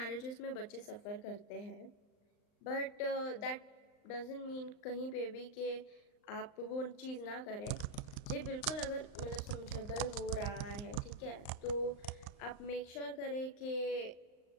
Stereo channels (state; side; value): late; right; 38 ms